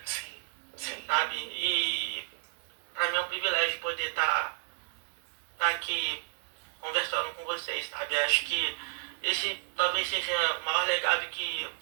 Sim, sim. sabe? E pra mim é um privilégio poder estar aqui conversando com vocês, sabe? Acho que esse talvez seja o maior legado que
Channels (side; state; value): left; silent; digital silence